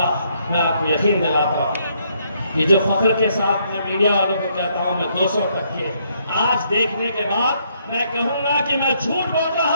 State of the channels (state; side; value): inverted; both; correlation -0.71